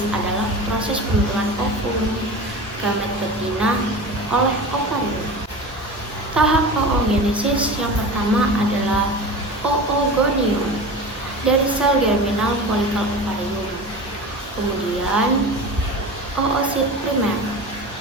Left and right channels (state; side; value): normal; both; correlation 0.32